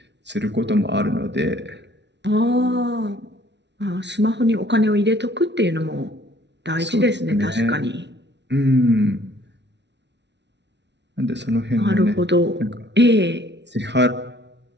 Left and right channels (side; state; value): left; late; 0.51 ms